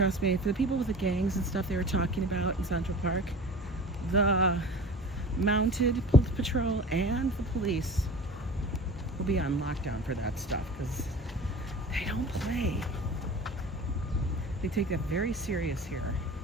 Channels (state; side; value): normal; both; correlation 0.38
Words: me, for the people with the gangs and stuff they were talking about in Central Park, the mounted patrol and the police will be on lockdown for that stuff because they don't play. They take that very serious here.